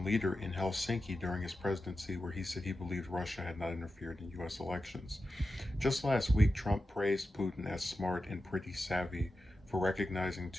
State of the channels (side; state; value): both; normal; correlation 0.92